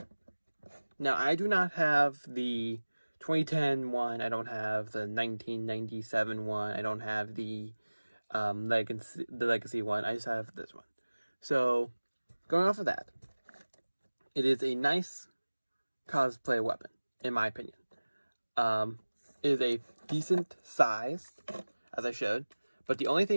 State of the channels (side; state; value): both; inverted; correlation -1.00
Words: Now, I do not have the 2010 one, I don't have the 1997 one, I don't have the Legacy one, I just have this one. So, going off of that, it is a nice cosplay weapon, in my opinion. It is a decent size, as I showed, but the only